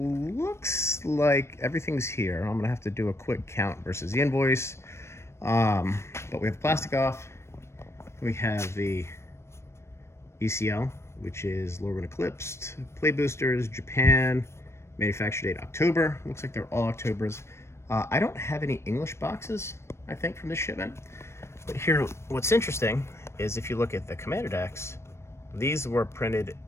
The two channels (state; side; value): late; right; 0.13 ms